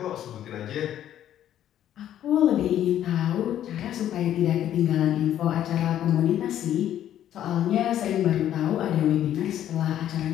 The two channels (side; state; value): right; quieter; 11.3 dB